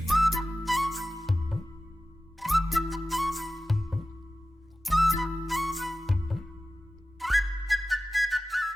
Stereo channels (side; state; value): both; normal; correlation 0.95